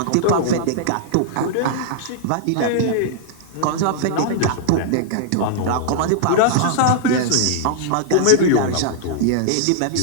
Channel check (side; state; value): both; different; correlation -0.01